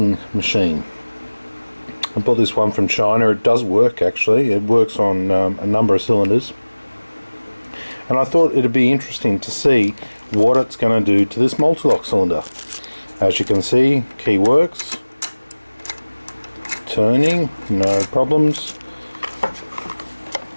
machine. I bought this one from China. It does work actually. It works on a number of cylinders, and I thought it'd be interesting to see what it's going to do to this Mul-T-Lock cylinder. As you can see, key works, turning, no problems.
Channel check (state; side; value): inverted; both; correlation -1.00